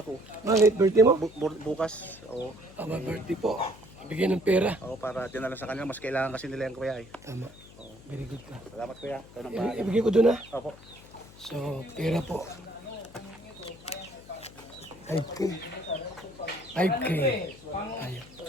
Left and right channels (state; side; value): noise; left; hum, 21 dB below the sound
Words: ako. Bakit? Birthday mo? Bukas. Oo. Aba, birthday po. Bigyan ng pera. Oo, para dinala sa kanila. Mas kailangan kasi nila yung Kuya eh. Tama. Very good ka. Salamat Kuya. Ikaw nang bahala. Ibigay ko doon na. Opo. So, pera po. 5K. 5K. Ayun.